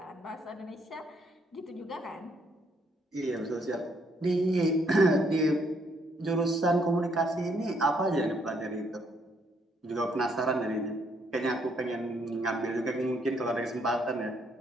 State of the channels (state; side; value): normal; both; correlation 0.71